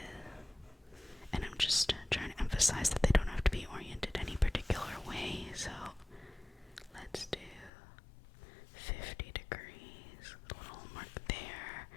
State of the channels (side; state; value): right; drops out; at 7.7 s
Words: And I'm just trying to emphasize that they don't have to be oriented any particular way. So let's do 50 degrees, a little mark there,